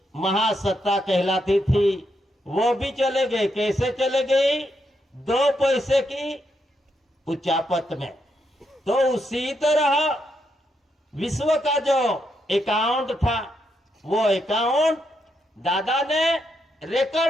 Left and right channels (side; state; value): both; normal; correlation 0.80